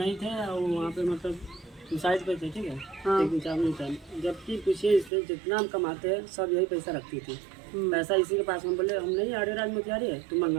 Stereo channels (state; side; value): drops out; left; at 5.1 s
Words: थे और वहाँ पे मतलब साइड पे थे, ठीक है। हाँ। एक दिन चार नहीं था, जबकि पूछिए इससे जितना हम कमाते हैं सब यही पैसा रखती थी। पैसा इसी के पास। हम बोले हम नहीं आड़े राज में क्या है, तुम